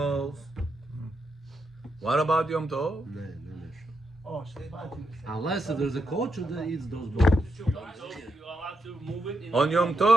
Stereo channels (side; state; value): both; normal; correlation 0.83